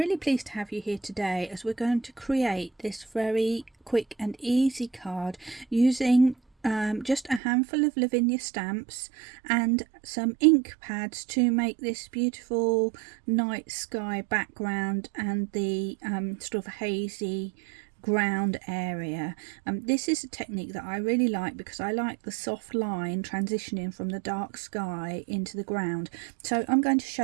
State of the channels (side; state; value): left; drops out; at 7.4 s